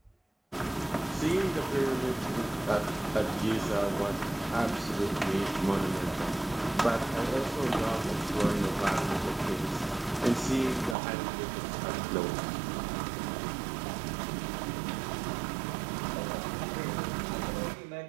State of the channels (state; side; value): drops out; left; at 11.0 s